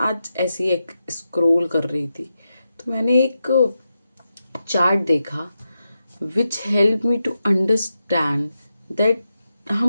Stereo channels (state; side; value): inverted; both; correlation -0.88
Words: आज ऐसे ही एक scroll कर रही थी तो मैंने एक चार्ट देखा which help me to understand that